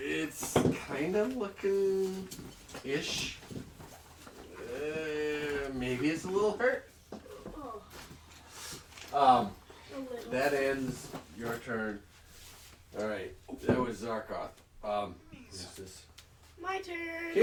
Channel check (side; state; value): both; identical; correlation 1.00